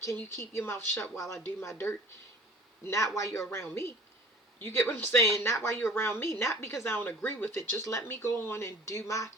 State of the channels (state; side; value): normal; both; correlation 0.47